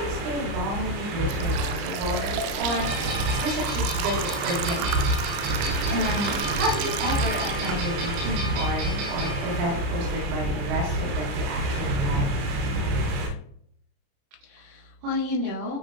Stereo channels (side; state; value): left; late; 30 ms